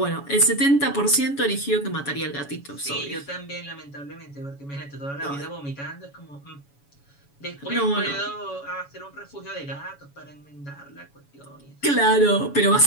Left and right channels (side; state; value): right; late; 7.1 ms